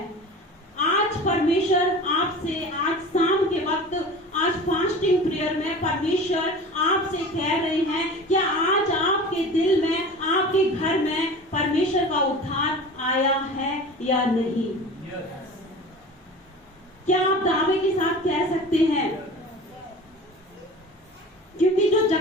आज परमेश्वर आपसे, आज शाम के वक्त, आज फास्टिंग प्रेयर में परमेश्वर आपसे कह रहे हैं, क्या आज आपके दिल में, आपके घर में परमेश्वर का उद्धार आया है या नहीं? क्या आप दावे के साथ कह सकते हैं? क्योंकि जो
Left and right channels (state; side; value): normal; both; correlation 0.37